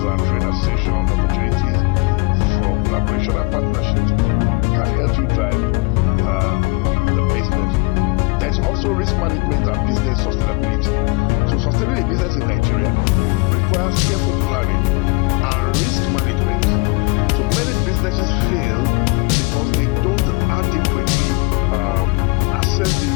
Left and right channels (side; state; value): right; quieter; 27.0 dB